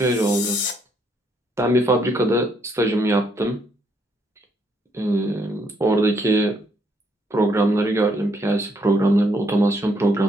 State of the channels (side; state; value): both; normal; correlation 0.72